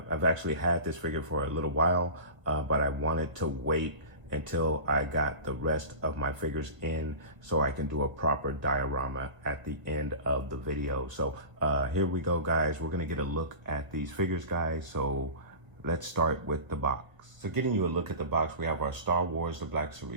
actually had this figure for a little while, but I wanted to wait until I got the rest of my figures in so I can do a proper diorama at the end of the video. So here we go, guys. We're gonna get a look at these figures, guys. So let's start with the box. So getting you a look at the box, we have our Star Wars The Black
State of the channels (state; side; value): late; left; 1.4 ms